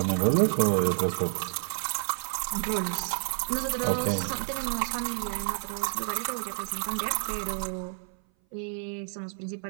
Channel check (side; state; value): left; silent; 56 dB below the other